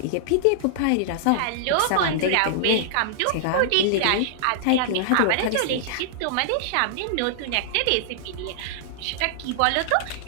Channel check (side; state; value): both; different; correlation -0.01